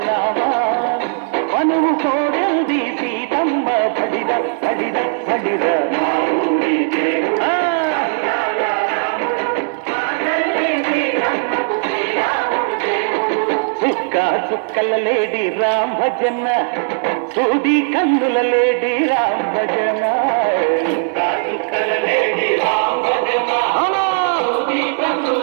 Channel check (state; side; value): silent; left; 68 dB below the other